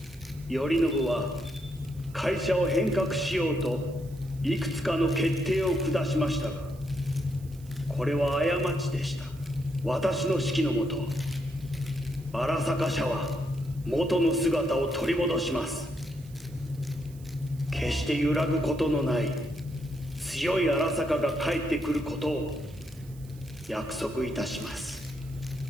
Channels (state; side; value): noise; right; hiss, 25 dB below the sound